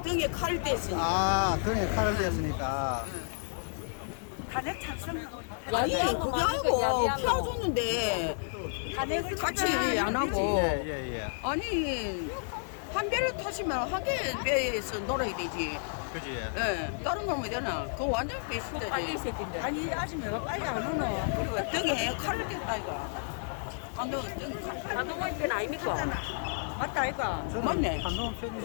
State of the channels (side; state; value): right; silent; digital silence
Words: 등에 칼을 댔으니 아, 그래, 칼을 댔으니까. 탄핵 찬성하고 야비한 아니 거 그거 많으니까 하고 야비한 거. 펴주는데 탄핵을 같이 얘기 안 하고 예, 예, 예. 아니 한 배를 타시면 한 개 배에서 놀아야 되지. 그지? 예, 다른 거 뭐 되나? 그거 완전 빨리 배신자지. 새끼인데. 아니 아직 내가 빨리 안 오노. 그리고 등에 칼을 댔다 이거. 한동훈 등에 칼. 한동훈 편 아닙니까? 맞다 이거. 저는 맞네. 한동훈